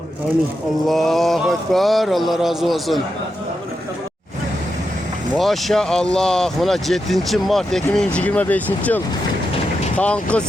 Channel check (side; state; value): both; normal; correlation 0.87